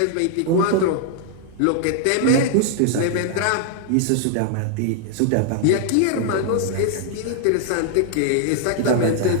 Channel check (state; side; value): different; both; correlation 0.00